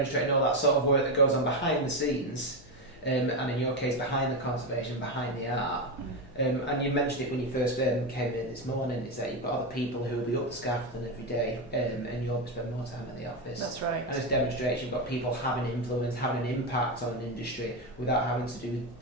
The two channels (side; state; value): left; noise; hum, 23 dB below the sound